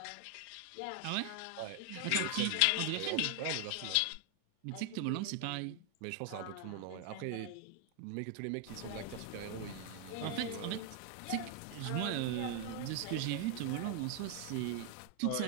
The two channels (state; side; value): different; both; correlation 0.00